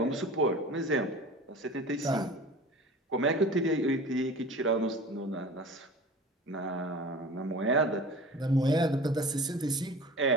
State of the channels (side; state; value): both; normal; correlation 0.39